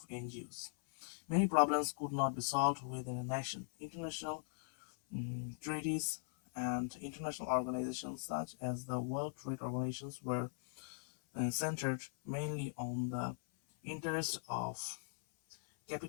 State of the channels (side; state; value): right; silent; 51 dB below the other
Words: NGOs. Many problems could not be solved within a nation. International treaties and international organizations such as the World Trade Organizations were centered mainly on the interests of